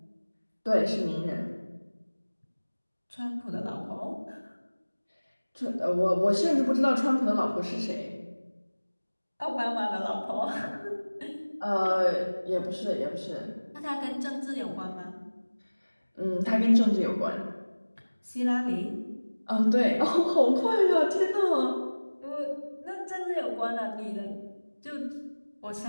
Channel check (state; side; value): inverted; both; correlation -1.00